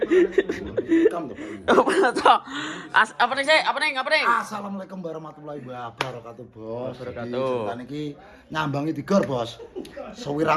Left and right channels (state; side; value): identical; both; correlation 1.00